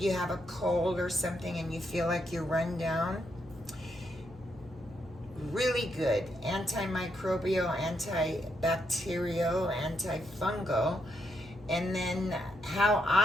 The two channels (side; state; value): both; normal; correlation 0.79